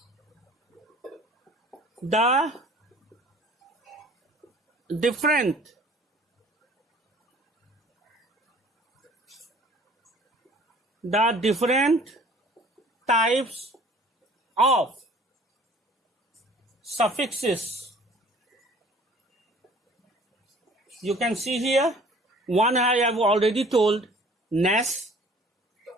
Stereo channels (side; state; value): both; normal; correlation 0.51